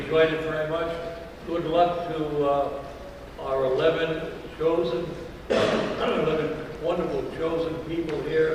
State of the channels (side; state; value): both; identical; correlation 1.00